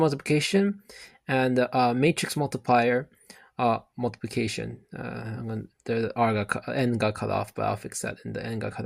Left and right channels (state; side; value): identical; both; correlation 1.00